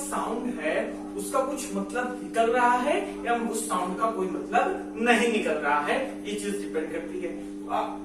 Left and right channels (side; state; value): both; identical; correlation 1.00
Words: है उसका कुछ मतलब निकल रहा है या उस साउंड का कोई मतलब नहीं निकल रहा है, ये चीज डिपेंड करती है।